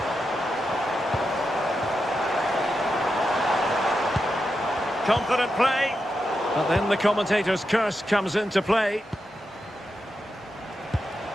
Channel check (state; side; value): normal; both; correlation 0.87